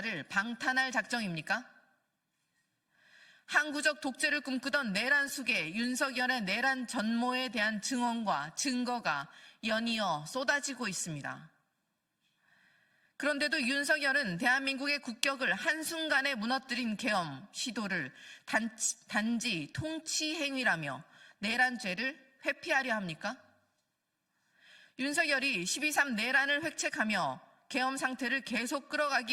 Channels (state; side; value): identical; both; correlation 1.00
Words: 방탄할 작정입니까? 항구적 독재를 꿈꾸던 내란 속에 윤석열의 내란 전모에 대한 증언과 증거가 연이어 쏟아지고 있습니다. 그런데도 윤석열은 대한민국의 국격을 한순간에 무너뜨린 계엄 시도를 단지 통치 행위라며 내란죄를 회피하려 합니까? 윤석열이 12.3 내란을 획책하며 계엄 상태를 계속